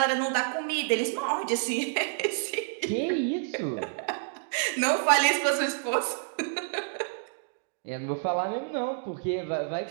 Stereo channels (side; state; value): left; silent; digital silence